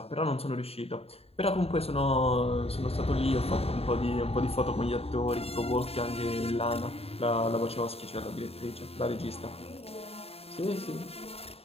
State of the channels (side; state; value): right; late; 0.29 ms